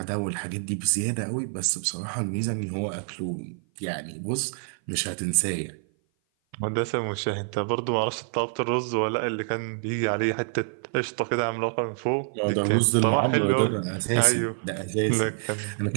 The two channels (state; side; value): silent; left; 56 dB below the other